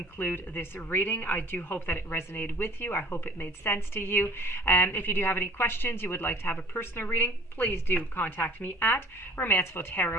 this reading. I do hope that it resonated with you. I hope it made sense to you. If you do have any questions, you would like to have a personal reading, please do contact me at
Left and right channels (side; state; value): both; normal; correlation 0.49